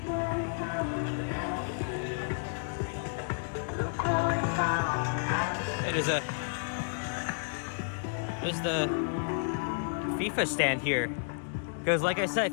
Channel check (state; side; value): silent; right; digital silence